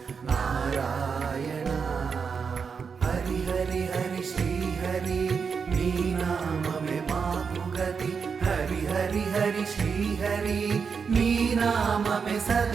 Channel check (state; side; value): quieter; left; 5.9 dB